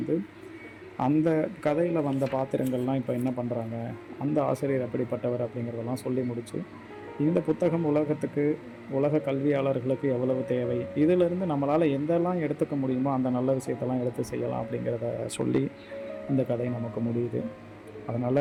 அந்த கதையில் வந்த பாத்திரங்கள்லாம் இப்போ என்ன பண்ணுறாங்க, அந்த ஆசிரியர் எப்படிப்பட்டவர் அப்படிங்கிறதெல்லாம் சொல்லி முடித்து, இந்த புத்தகம் உலக கல்வியாளர்களுக்கு எவ்வளவு தேவை, இதிலிருந்து நம்மளால் எந்தெல்லாம் எடுத்துக்க முடியுமோ அந்த நல்ல விஷயத்தெல்லாம் எடுத்து செய்யலாம் அப்படிங்கிறத சொல்லி இந்த கதை நமக்கு முடியுது.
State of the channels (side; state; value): both; identical; correlation 1.00